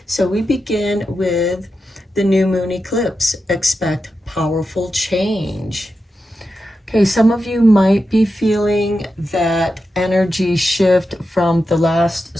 So we begin with the new moon eclipse. Expect powerful change. Okay, some of you might be feeling that energy shift from the last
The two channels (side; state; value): both; normal; correlation 0.89